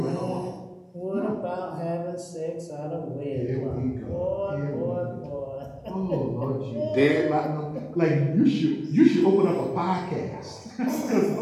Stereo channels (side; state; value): both; identical; correlation 1.00